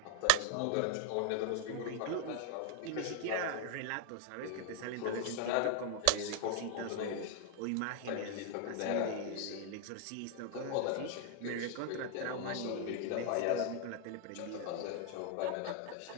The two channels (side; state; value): both; different; correlation 0.00